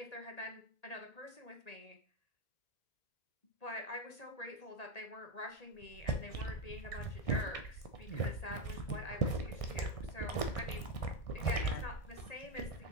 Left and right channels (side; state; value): right; late; 1.6 ms